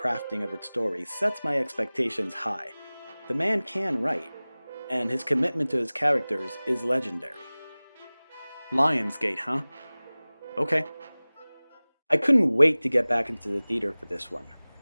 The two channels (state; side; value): inverted; both; correlation -0.99